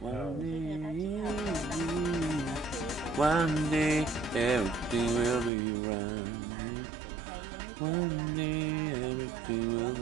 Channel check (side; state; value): left; drops out; at 5.5 s